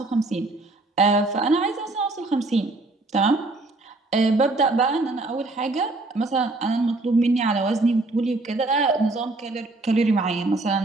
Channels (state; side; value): quieter; left; 3.0 dB